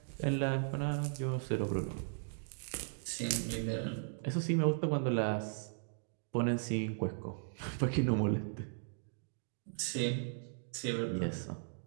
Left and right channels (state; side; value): silent; left; digital silence